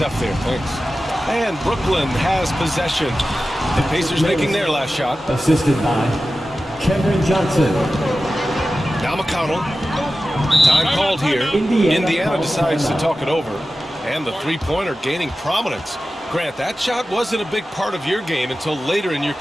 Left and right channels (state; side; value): normal; both; correlation 0.94